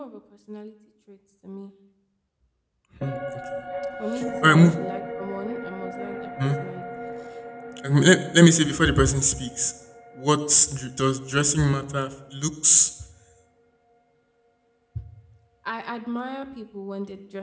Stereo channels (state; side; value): identical; both; correlation 1.00